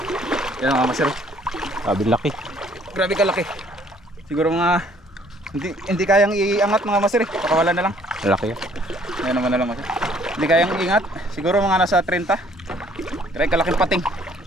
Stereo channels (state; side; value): normal; both; correlation 0.60